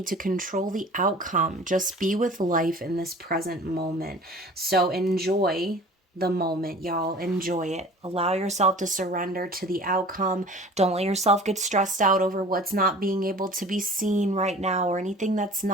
to control the outcome. Just be with life in this present moment. So enjoy the moment, y'all. Enjoy it. Allow yourself to surrender to the outcome. Don't let yourself get stressed out over what's not being able to be seen right now, or anything that's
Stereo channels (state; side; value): normal; both; correlation 0.43